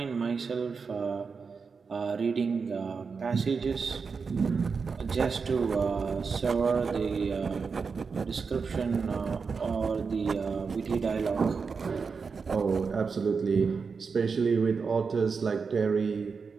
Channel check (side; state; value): left; quieter; 5.2 dB